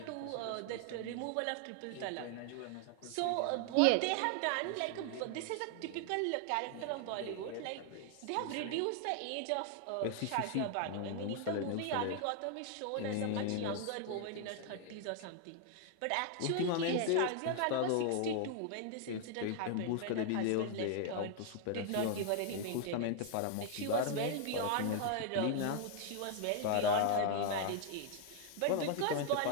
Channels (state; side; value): different; both; correlation 0.00